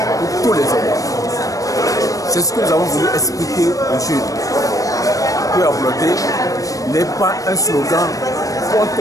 pour tous les hommes. C'est ce que nous avons voulu expliquer aux jeunes. Que ablodé n'est pas un slogan contre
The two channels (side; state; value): right; late; 0.16 ms